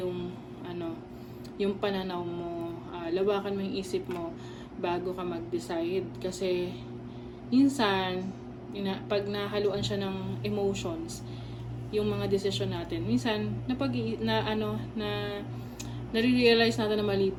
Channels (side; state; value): both; identical; correlation 1.00